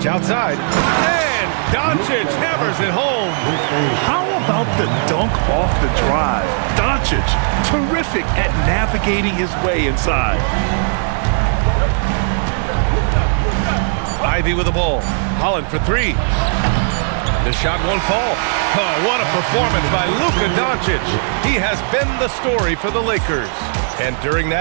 outside. And Doncic hammers it home. How about the dunk off the drive? Doncic, terrific at navigating his way inside. Ivy with the ball. Holland for 3. The shot won't fall. Oh, what a performance by Luka Doncic. He has been the story for the Lakers. And during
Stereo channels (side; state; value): left; silent; digital silence